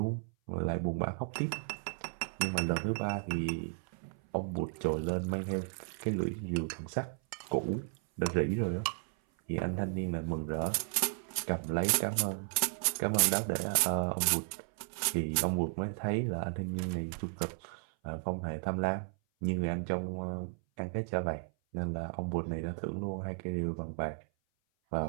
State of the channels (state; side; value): silent; left; 55 dB below the other